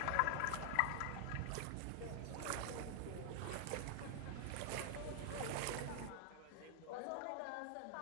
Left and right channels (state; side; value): different; both; correlation 0.00